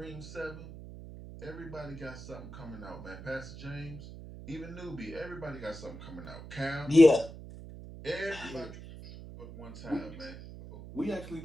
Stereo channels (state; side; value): noise; right; hum, 13 dB below the sound